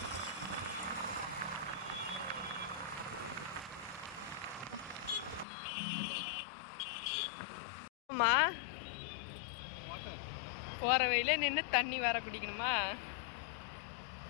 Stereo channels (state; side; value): drops out; right; at 5.5 s